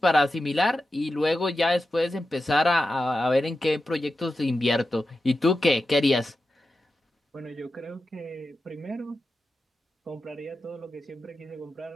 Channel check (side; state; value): both; normal; correlation 0.91